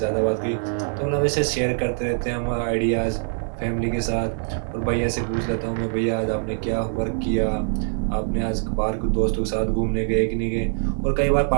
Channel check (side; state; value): left; silent; 62 dB below the other